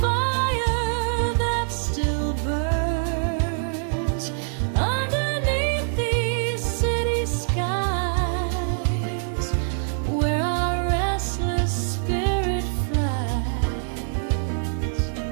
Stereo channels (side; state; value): left; silent; digital silence